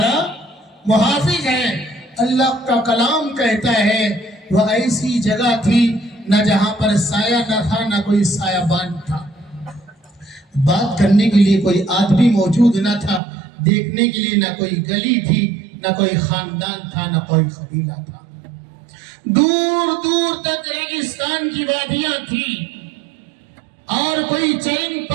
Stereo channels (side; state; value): left; drops out; at 13.2 s